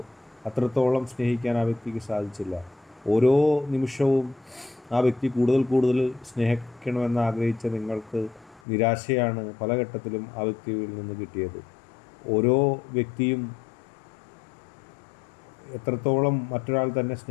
അത്രത്തോളം സ്നേഹിക്കാൻ ആ വ്യക്തിക്ക് സാധിച്ചില്ല. ഓരോ നിമിഷവും ആ വ്യക്തി കൂടുതൽ സ്നേഹിക്കണമെന്ന് ആഗ്രഹിച്ച നിങ്ങൾക്ക് നിരാശയാണ് പല ഘട്ടത്തിലും ആ വ്യക്തിയിൽ നിന്ന് കിട്ടിയത്. ഓരോ വ്യക്തിയും എത്രത്തോളം മറ്റൊരാൾ തന്നെ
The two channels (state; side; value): drops out; right; at 8.6 s